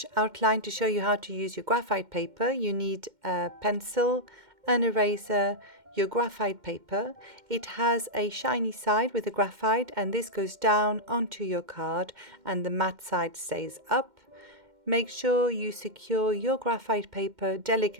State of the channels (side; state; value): left; late; 2.1 ms